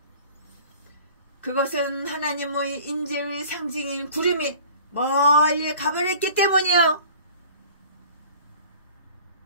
그것은 하나님의 임재의 상징인 구름이 멀리 가버렸기 때문이요.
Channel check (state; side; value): inverted; both; correlation -0.45